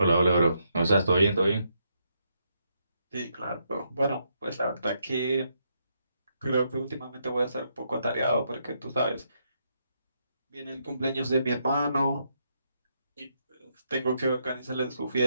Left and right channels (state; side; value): inverted; both; correlation -0.78